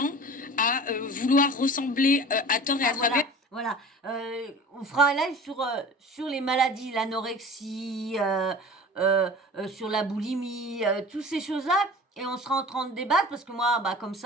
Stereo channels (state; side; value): normal; both; correlation 0.40